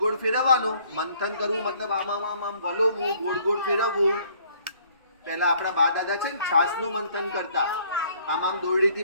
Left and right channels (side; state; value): both; inverted; correlation -0.60